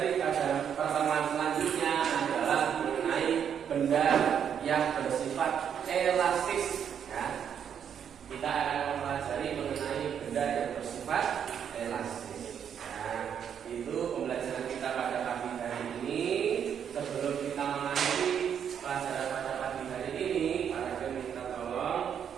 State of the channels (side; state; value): left; quieter; 8.3 dB